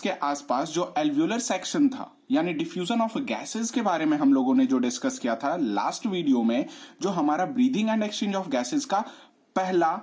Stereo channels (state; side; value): identical; both; correlation 1.00